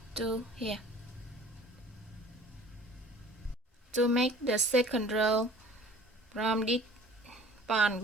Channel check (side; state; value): both; normal; correlation 0.48